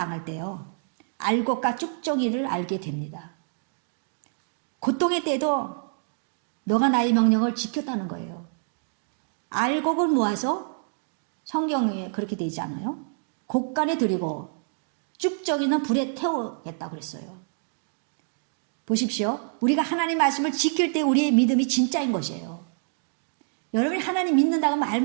때요. 알곡과 쭉정이를 알게 됩니다. 고통의 때도 너가 나의 명령을 지켰다는 거예요. 알곡을 모아서 성경에 그렇게 되지 않아요? 곡간에 들이고 쭉정이는 불에 태우겠다고 그랬어요. 보십시오. 우리가 하나님 말씀을 지킬 때 우리의 믿음이 진짜인 것이에요. 여러분이 하나님 믿는다고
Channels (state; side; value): silent; left; digital silence